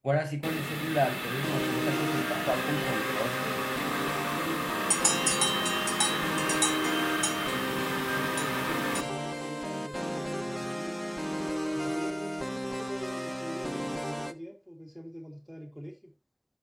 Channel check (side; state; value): both; identical; correlation 1.00